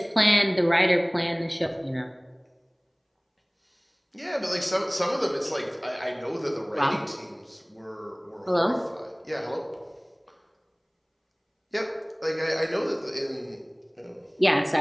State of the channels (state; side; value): identical; both; correlation 1.00